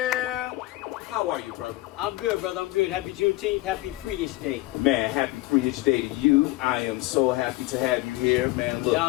How are you, brother? I'm good, brother. I'm good. Happy Juneteenth. Happy Free-ish Day. Man, happy Free-ish Day to you. I am so happy to have you here, man. Look.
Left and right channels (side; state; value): right; quieter; 19.1 dB